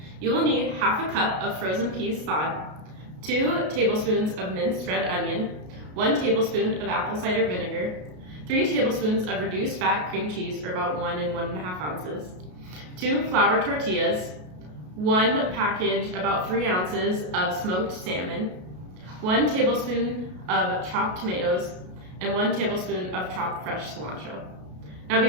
You will need half a cup of frozen peas thawed, 2 tablespoons of minced red onion, 1 tablespoon of apple cider vinegar, 3 tablespoons of reduced fat cream cheese, or about 1 and 1.5 ounces, 2 flour tortillas, 1 package, about 3 ounces of smoked salmon, 1 tablespoon of chopped tomatoes, and 1 tablespoon of chopped fresh cilantro. Now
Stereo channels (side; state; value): left; late; 33 ms